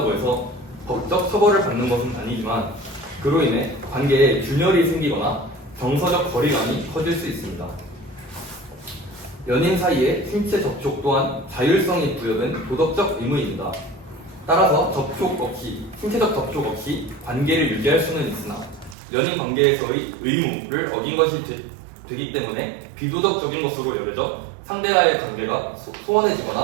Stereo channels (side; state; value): left; drops out; at 18.9 s